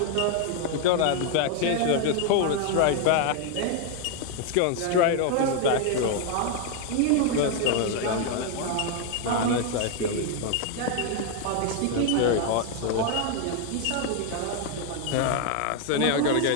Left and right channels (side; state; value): both; different; correlation 0.00